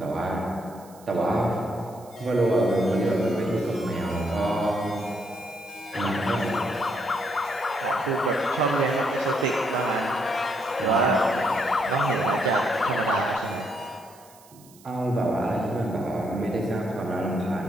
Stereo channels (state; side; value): noise; right; hiss, 25 dB below the sound